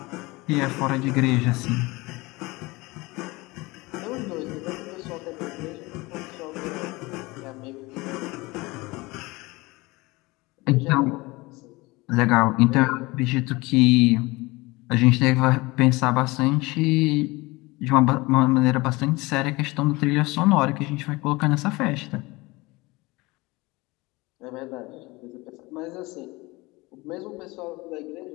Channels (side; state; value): right; quieter; 22.8 dB